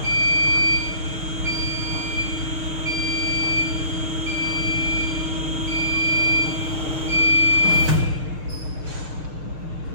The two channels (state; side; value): late; left; 6.5 ms